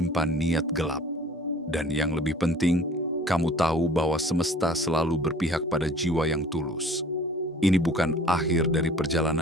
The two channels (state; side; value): normal; both; correlation 0.48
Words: niat gelap. Dan yang lebih penting, kamu tahu bahwa semesta selalu berpihak pada jiwa yang tulus. Ini bukan akhir dari